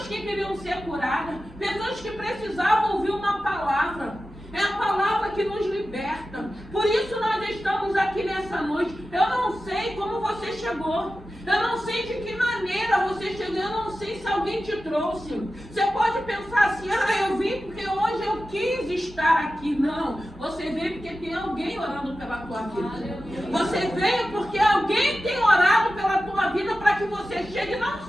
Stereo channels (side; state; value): both; normal; correlation 0.93